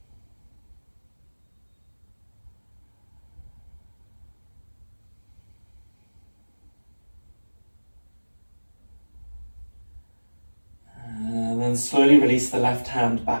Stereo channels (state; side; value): inverted; both; correlation -1.00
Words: And slowly release the left hand